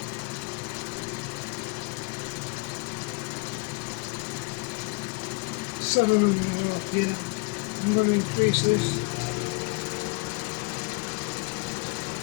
700 off, yeah. I'm going to increase this.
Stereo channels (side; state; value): right; quieter; 27.4 dB